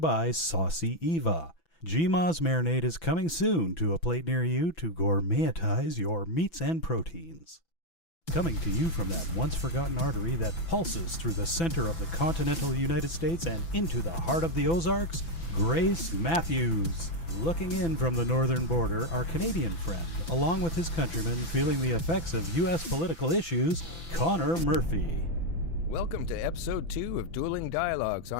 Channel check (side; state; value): right; late; 6.0 ms